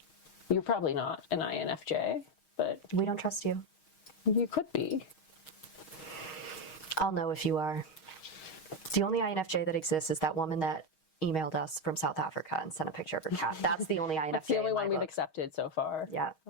You're probably not an INFJ, but we don't trust you. You could be. I'll know if you are. The only INFJ that exists is that woman that emailed us from South Africa and sent a picture of her cat. That's the only INFJ. That's the only in my one we've book. accepted so far. Yeah,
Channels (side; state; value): right; late; 6.4 ms